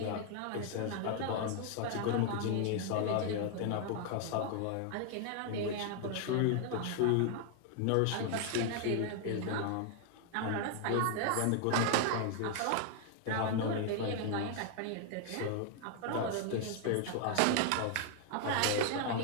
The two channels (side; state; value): both; different; correlation 0.00